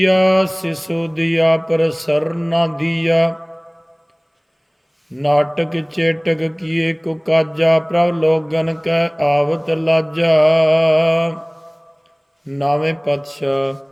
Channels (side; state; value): both; identical; correlation 1.00